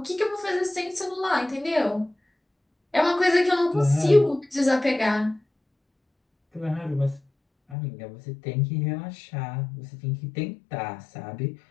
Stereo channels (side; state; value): right; drops out; at 7.8 s